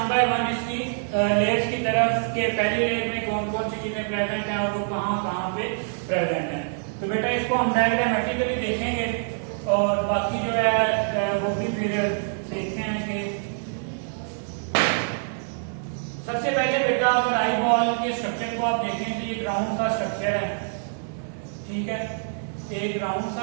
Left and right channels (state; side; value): silent; left; 61 dB below the other